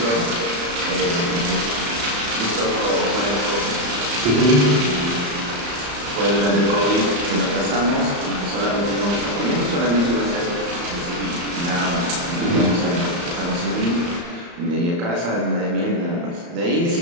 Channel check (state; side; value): late; left; 34 ms